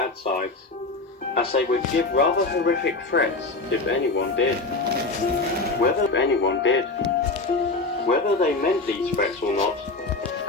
sides, as they would give rather horrific threats if anyone did. Whether they meant these threats or not,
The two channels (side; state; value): right; quieter; 3.5 dB